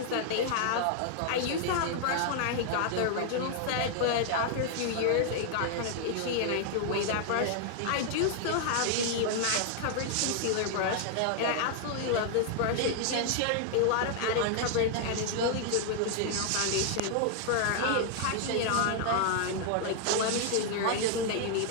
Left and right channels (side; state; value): both; different; correlation 0.00